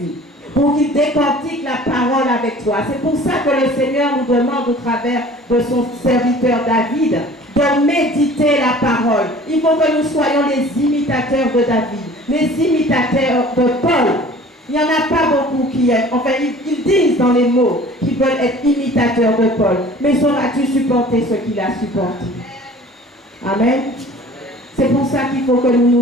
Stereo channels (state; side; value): normal; both; correlation 0.47